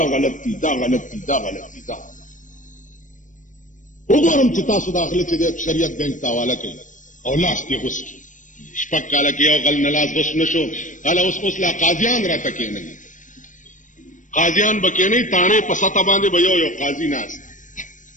गलती दा गलती दा गलती दा وګورم چې تاسو داخله چې د شریعت بینک حواله کوي او لاس کې غوس شپک کاله کې او غل نه لاس غوس نشو اله اوس لا قاضیان راته کې نه قاضیان بکې نه تانه په ستا باندې به یو قاضي ناس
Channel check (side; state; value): right; late; 0.37 ms